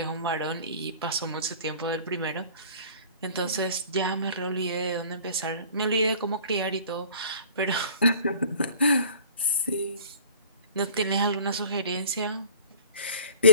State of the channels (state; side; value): inverted; both; correlation -0.47